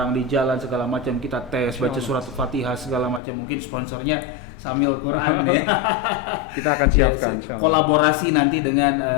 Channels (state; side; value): drops out; right; at 3.2 s